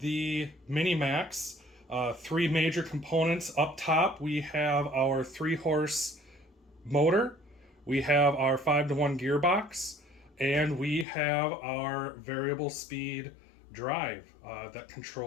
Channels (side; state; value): right; drops out; at 11.1 s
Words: MiniMAX. Three major components. Up top we have our 3-horse motor, we have our 5-to-1 gearbox, and we have our variable speed drive that